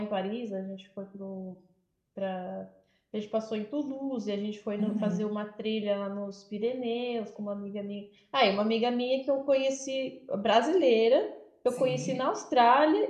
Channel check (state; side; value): identical; both; correlation 1.00